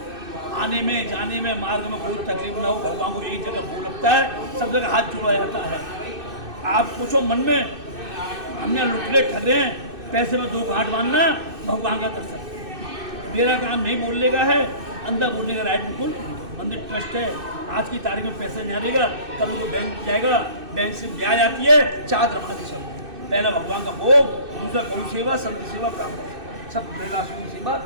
आने में जाने में मार्ग में कोई तकलीफ ना हो, भगवान को एक जगह भोग लगता है, सब जगह हाथ जोड़ा जाता है। आप सोचो मन में, हमने लुटले ठगे हैं, पैसे में 2 गांठ बांधना, भगवान का दर्शन। मेरा काम नहीं बोलने का है, अंदर बोलने का राइट बिल्कुल। मंदिर ट्रस्ट है, आज की तारीख में पैसे नहीं आएगा, कल वो बैंक जाएगा, बैंक से ब्याज आती है, 4 धर्मादि सब। पहला भगवान का भोग, दूसरा गौ सेवा, संत सेवा, ब्राह्मण सब बेलासुन सेवा।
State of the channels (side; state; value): left; late; 2.6 ms